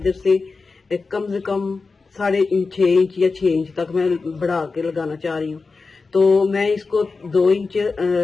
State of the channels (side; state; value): right; quieter; 4.2 dB